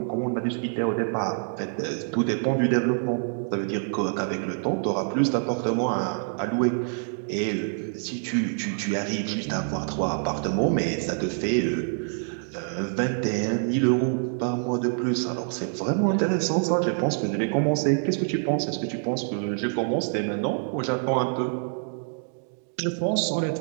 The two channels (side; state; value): left; silent; 61 dB below the other